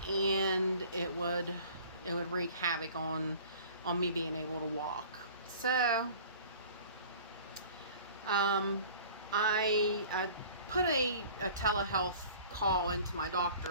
and it would wreak havoc on me being able to walk. So I put a telehealth call into my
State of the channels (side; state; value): both; inverted; correlation -0.46